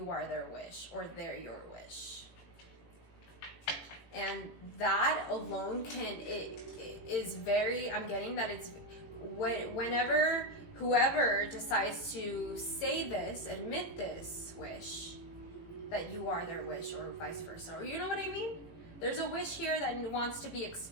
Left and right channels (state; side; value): late; right; 18 ms